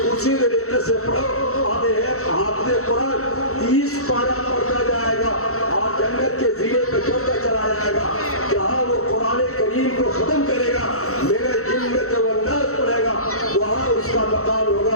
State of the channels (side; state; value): right; late; 0.64 ms